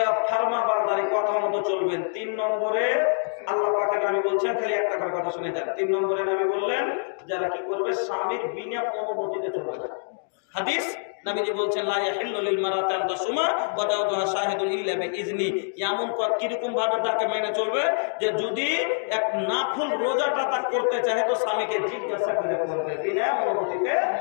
ফরমাবরদারি, কথা মতো চলবেন। 3 নম্বরে আল্লাহ পাকের নবী বলছেন, খালি একটা করে কথা শুনে যান। 3 নম্বরে নবী বললেন যারা কি করবে স্বামীর বিনা অনুমতিতে চলবে না। হাদিস নবীজি বলছেন লা ইয়াহিল্লু লিল মারাতি আন তাসুমা ওয়া দাওতুহা শাহিদুন ইল্লা বিইজনি, এমন কিরকম ভাবে তাকে মেনে চলবে যে যদি এক নাফল রোজাটা তা করতে চায় তো স্বামীকে জিজ্ঞাসা করে করবে, বিনা অনুমতিতে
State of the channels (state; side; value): silent; right; digital silence